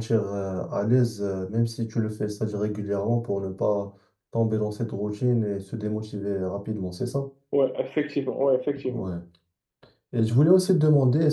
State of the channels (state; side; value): identical; both; correlation 1.00